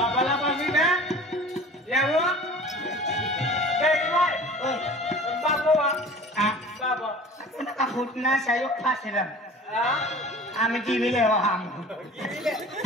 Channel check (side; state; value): both; normal; correlation 0.42